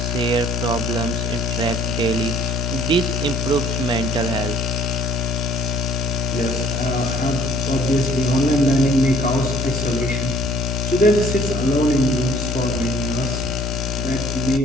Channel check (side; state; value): both; normal; correlation 0.57